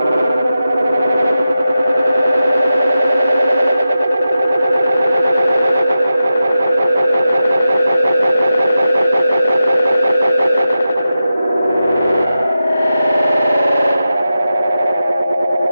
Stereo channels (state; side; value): inverted; both; correlation -0.91